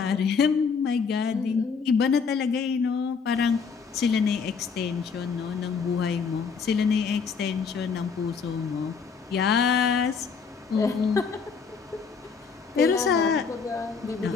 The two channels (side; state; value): right; quieter; 5.6 dB